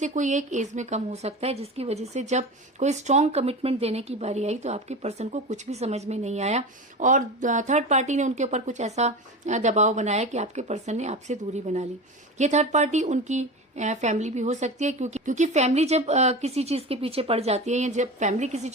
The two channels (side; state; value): both; normal; correlation 0.28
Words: कोई एक एज में कम हो सकता है, जिसकी वजह से जब कोई स्ट्रांग कमिटमेंट देने की बारी आई तो आपके पर्सन को कुछ भी समझ में नहीं आया, और थर्ड पार्टी ने उनके ऊपर कुछ ऐसा दबाव बनाया कि आपके पर्सन ने आपसे दूरी बना ली। ये थर्ड पार्टी उनकी फैमिली भी हो सकती है, क्योंकि फैमिली जब किसी चीज के पीछे पड़ जाती है, या जब फैमिली किसी